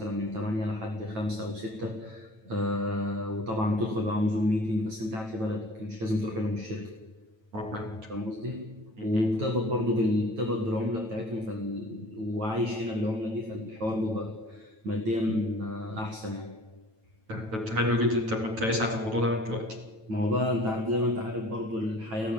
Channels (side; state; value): left; late; 9.1 ms